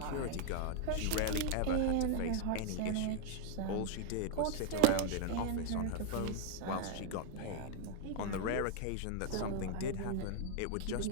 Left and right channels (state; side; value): different; both; correlation 0.00